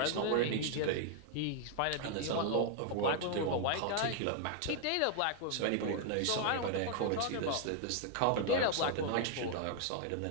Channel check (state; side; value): different; both; correlation 0.00